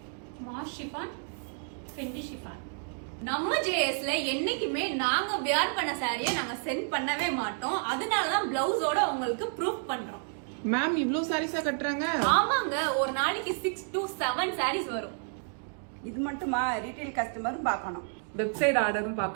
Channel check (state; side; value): silent; left; 58 dB below the other